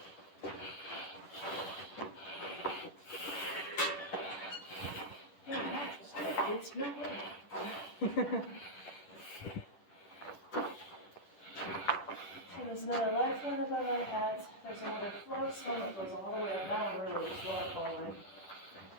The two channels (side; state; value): right; late; 10 ms